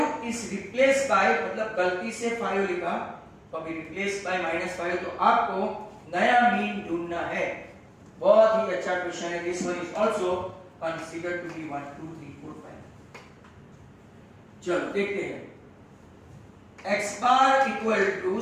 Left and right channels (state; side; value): identical; both; correlation 1.00